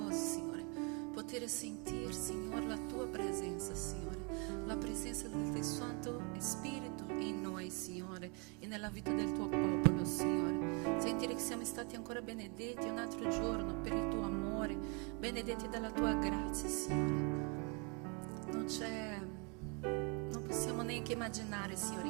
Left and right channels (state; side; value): quieter; left; 33.3 dB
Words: Signore, poter sentire, Signore, la tua presenza, Signore, la presenza del tuo Santo Spirito in noi, Signore, e nella vita del tuo popolo, Signore. Sentire che siamo stati ancora benedetti un altro giorno per il tuo amore, benedetti dalla tua grazia, Signore. Non possiamo neanche immaginare,